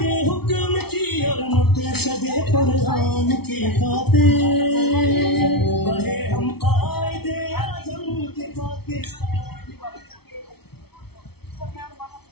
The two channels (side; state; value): right; late; 0.96 ms